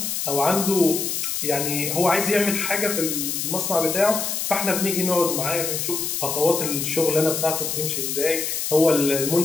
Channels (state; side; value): noise; left; hiss, 2 dB below the sound